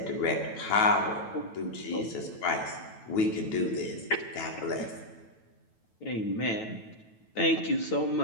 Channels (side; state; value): right; late; 9.2 ms